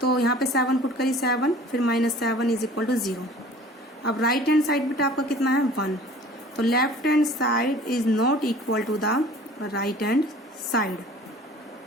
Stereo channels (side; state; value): both; normal; correlation 0.47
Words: यहाँ पे 7 पुट करी 7, फिर माइनस 7 इज इक्वल टू 0। अब राइट हैंड साइड बेटा आपका कितना है 1। तो left hand side is not equal to the right hand side,